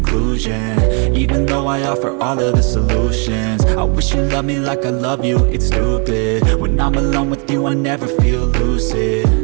even though I offer all of the solutions. I wish you loved me like I love you, it's stupid. When I'm alone with you I never feel lucid.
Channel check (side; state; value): left; quieter; 36.8 dB